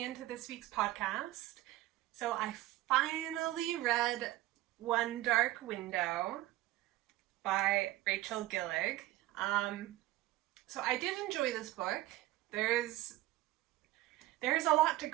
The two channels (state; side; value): quieter; left; 16.5 dB